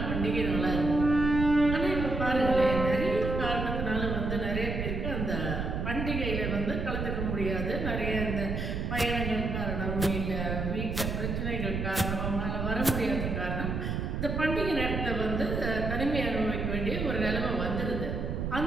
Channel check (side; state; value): right; noise; rumble, 2 dB below the sound